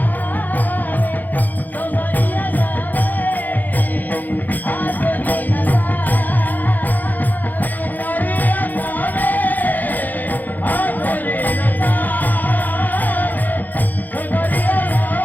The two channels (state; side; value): late; right; 0.084 ms